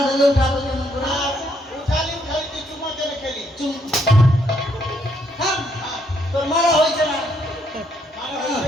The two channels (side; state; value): both; normal; correlation 0.72